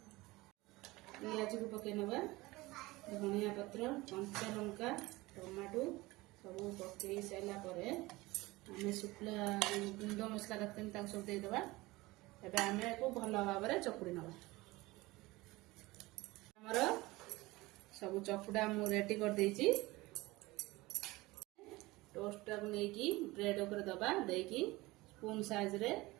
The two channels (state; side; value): quieter; left; 20.7 dB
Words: पियाज को पकई नवा धनिया पत्र कंचा लंका टमाटो सब पकई सारा आम शुक्ला गुंड मसला रखते सब देदेबा आम को भल भाव चकुड़ी नवा आमर सब चकुड़ा मु रेडी कर देइछि टोस्ट को लेकिन ब्रेड ऊपर दबा देकी स्पून साइज रे